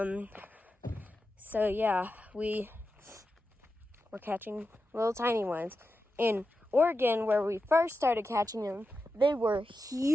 So yeah, we're catching little tiny ones. In Oregon, where we first started catching them, they were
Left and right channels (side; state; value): both; normal; correlation 0.90